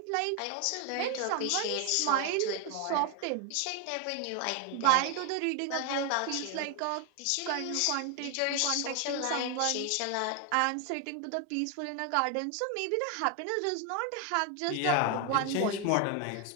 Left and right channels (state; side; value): different; both; correlation 0.01